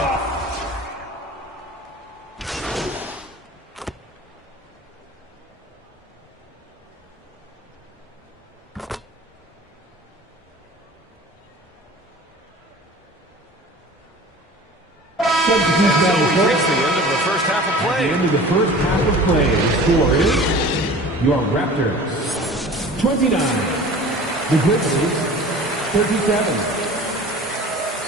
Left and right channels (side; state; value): both; normal; correlation 0.41